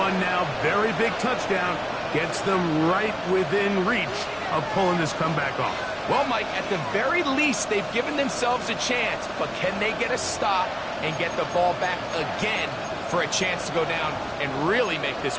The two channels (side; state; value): both; identical; correlation 1.00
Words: now. Very big touchdown. Gets them right within reach of pulling this comeback off. Well, Mike, at the very least, they've given themselves a chance. But can they get a stop and get the ball back again for a chance to go down and really make this